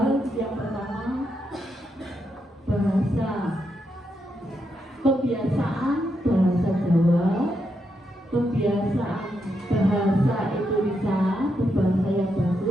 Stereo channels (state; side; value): normal; both; correlation 0.82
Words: Yang pertama bahasa, kebiasaan bahasa Jawa, kebiasaan bahasa Indonesia, berbahasa yang